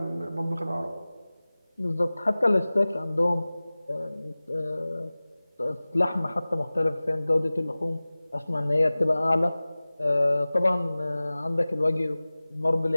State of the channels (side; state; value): both; inverted; correlation -0.98